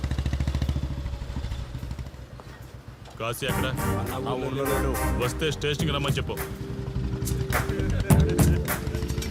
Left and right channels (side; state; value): both; identical; correlation 1.00